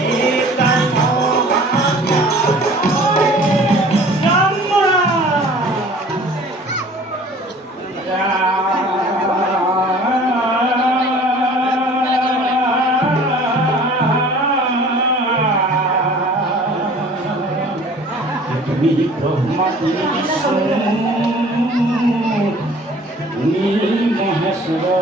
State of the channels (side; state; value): both; normal; correlation 0.49